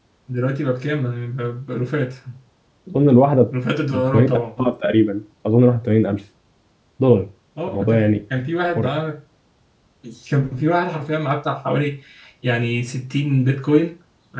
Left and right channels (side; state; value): both; identical; correlation 1.00